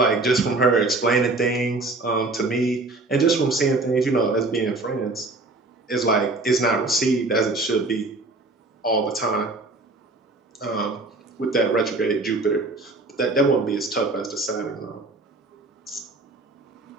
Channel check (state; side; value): quieter; left; 3.2 dB